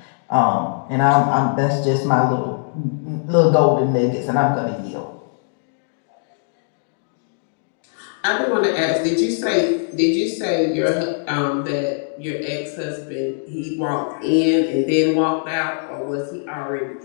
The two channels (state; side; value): silent; right; digital silence